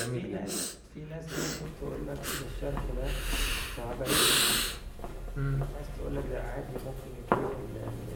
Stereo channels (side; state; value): both; identical; correlation 1.00